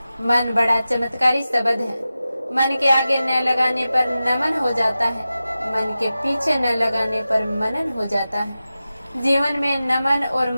मन बड़ा चमत्कारी शब्द है, मन के आगे न लगाने पर नमन हो जाता है, मन के पीछे न लगाने पर मनन हो जाता है। जीवन में नमन और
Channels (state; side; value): inverted; both; correlation -0.94